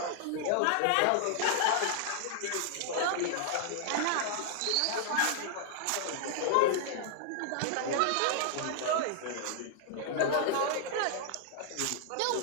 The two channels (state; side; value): different; both; correlation -0.01